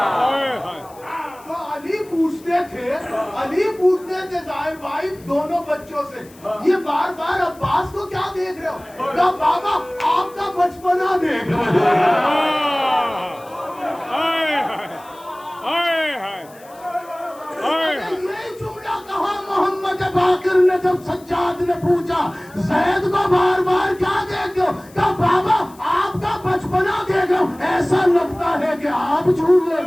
ہائے تو علی پوچھتے تھے ظاہر بھائی دونوں بچوں سے، یہ بار بار عباس کو کیا دیکھ رہے ہو؟ کہا بابا آپ کا بچپنا دیکھ رہے یہ جملہ کہا محمد باقر نے جب سجاد نے پوچھا زید کو بار بار کیا دیکھ رہے ہو؟ کہا بابا آپ کا بچپنا دیکھ رہے ہو، ایسا لگتا ہے کہ آپ جھولے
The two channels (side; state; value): left; noise; hiss, 25 dB below the sound